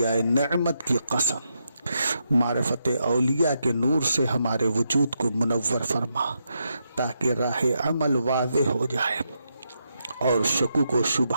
نعمت کی قسم، معرفت اولیاء کے نور سے ہمارے وجود کو منور فرما، تاکہ راہ عمل واضح ہو جائے اور شکوک و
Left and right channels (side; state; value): both; inverted; correlation -0.82